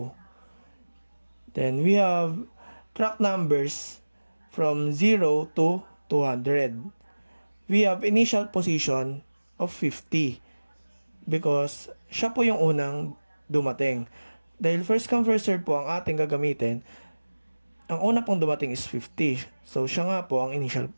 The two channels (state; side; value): inverted; both; correlation -1.00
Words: Then we have track numbers from 0 to 200. We have initial position of 50 because siya po yung unang dumating. Dahil first come first serve po ang ating gagamitin, ang una pong dumating is 50. So siya nga po ang initial